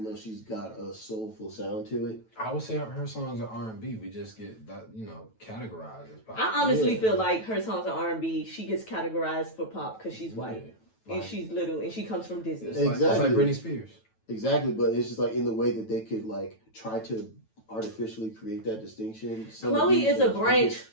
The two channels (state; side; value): late; right; 9.1 ms